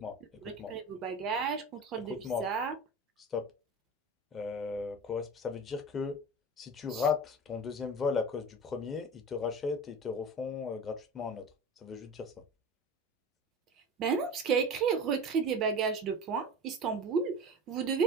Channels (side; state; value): both; normal; correlation 0.33